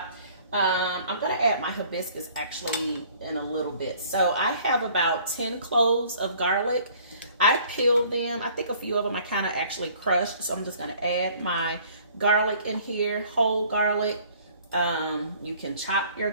I'm gonna add my hibiscus actually in a little bit. So I have about 10 cloves of garlic. I peeled them. I think a few of them I kind of actually crushed. So I'm just gonna add my garlic in here, whole garlic. You can chop your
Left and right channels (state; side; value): inverted; both; correlation -0.55